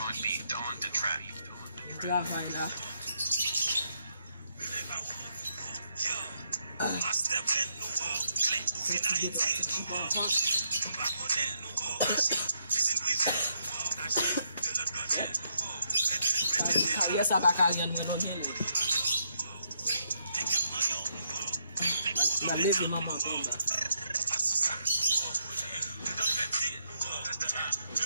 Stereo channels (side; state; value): both; inverted; correlation -0.76